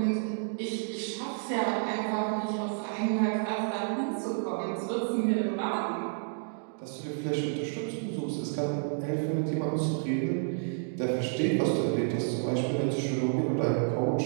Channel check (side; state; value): left; silent; digital silence